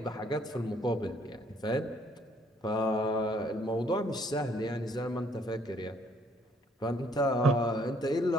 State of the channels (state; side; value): normal; both; correlation 0.64